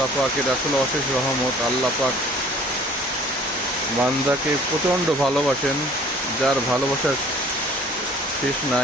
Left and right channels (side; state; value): both; normal; correlation 0.52